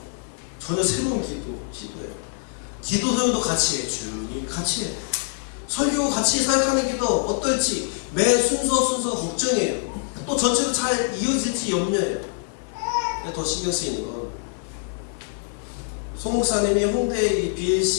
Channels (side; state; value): right; silent; digital silence